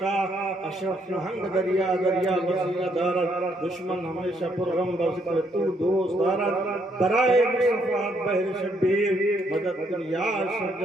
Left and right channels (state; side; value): normal; both; correlation 0.72